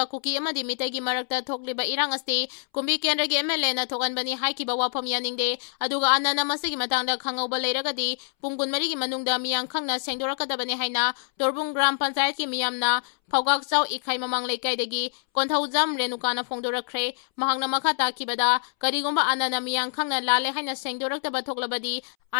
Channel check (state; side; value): silent; right; 61 dB below the other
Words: Kuki amadi mitai gi marakta thokliba irang asti kumbi kendra gi MLA na thokanbani haikiba wafam yaningde aduga anana masigi matangda khangauba leiragadi pung kunmari gi manungda miyang khangna sengdorakadabani haina Torbung Gram Panchayat ki miyamna Phawgak Chau Ikhai Mamang Leikaidagi Konthaujam Renukana Phongdorakre mahangna makha takibada karigomba anana miyang khangna lale haina sengdoraktaba thoklabadi